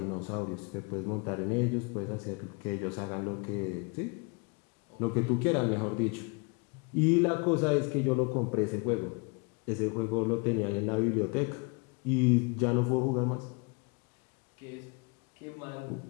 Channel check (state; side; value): quieter; right; 32.4 dB